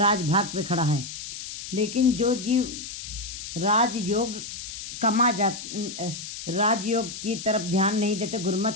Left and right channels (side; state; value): left; noise; hiss, 9 dB below the sound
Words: पे खड़ा है। लेकिन जो जीव राजयोग की तरफ ध्यान नहीं देते,